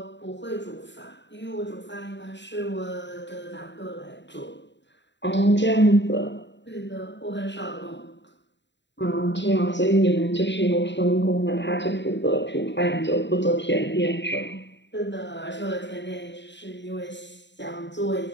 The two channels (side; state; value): right; late; 0.52 ms